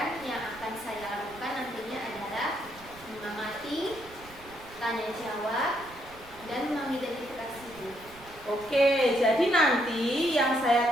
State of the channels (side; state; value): right; noise; rumble, 21 dB below the sound